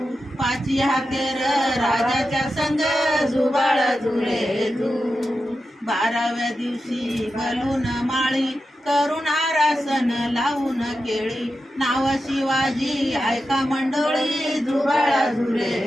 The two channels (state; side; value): normal; both; correlation 0.90